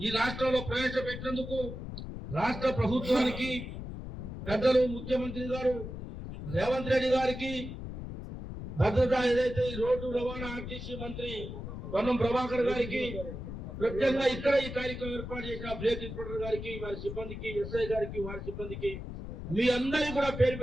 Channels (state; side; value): noise; left; rumble, 8 dB below the sound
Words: రాష్ట్రంలో ప్రవేశపెట్టినందుకు రాష్ట్ర ప్రభుత్వానికి, పెద్దలు ముఖ్యమంత్రి గారు రేవంత్ రెడ్డి గారికి, భద్రత ఏదైతే ఈ రోడ్డు రవాణా ఆర్టీసీ మంత్రి పొన్నం ప్రభాకర్ గారికి, ప్రత్యేకంగా ఇక్కడ ఈ కార్యక్రమం ఏర్పాటు చేసిన బ్రేక్ ఇన్స్పెక్టర్ గారికి, వారి సిబ్బందికి, ఎస్ఐ గారికి, వారి సిబ్బందికి, మీ అందరికీ కూడా పేరు